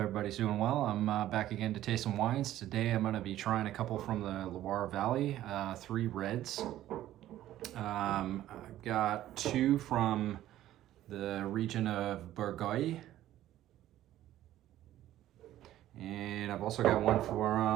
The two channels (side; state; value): left; quieter; 13.4 dB